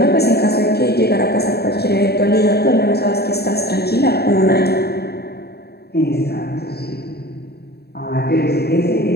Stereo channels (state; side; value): late; right; 0.47 ms